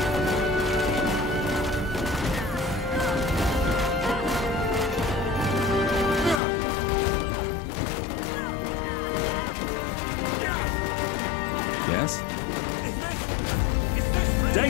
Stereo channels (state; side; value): drops out; right; at 6.4 s